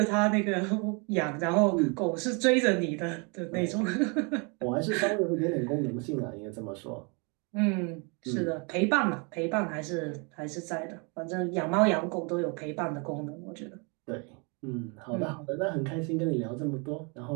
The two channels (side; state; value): left; quieter; 33.1 dB